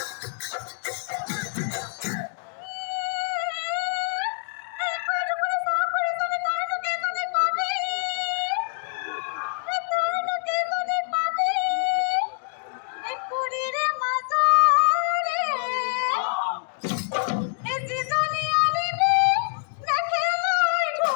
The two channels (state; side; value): silent; right; digital silence